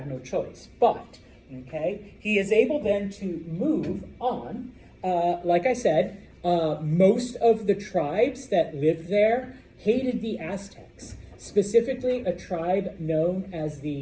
no choice. But, okay, he is able then to move on. Like I said, most of the tribes that lived there hated the Aztecs, specifically a tribe known as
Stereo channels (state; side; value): identical; both; correlation 1.00